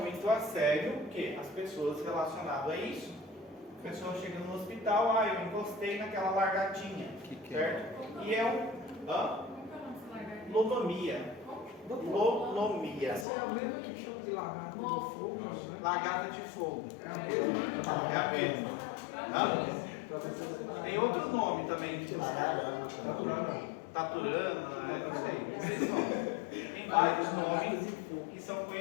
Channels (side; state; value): right; drops out; at 13.2 s